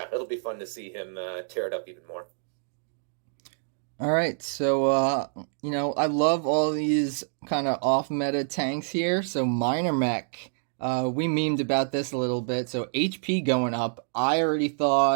it'll be fun to see him tear it up even more. All right, so you know, I love all these kind of off-meta tanks here. So minor mech, we memed about this a little bit. So HP going up. I already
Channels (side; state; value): left; silent; digital silence